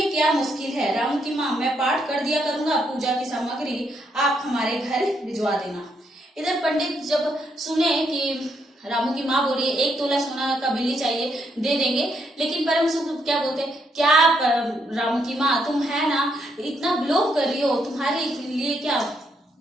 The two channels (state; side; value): normal; both; correlation 0.76